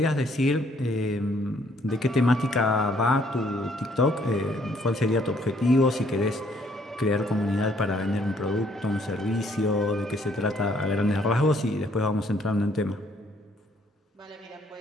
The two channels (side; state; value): both; normal; correlation 0.65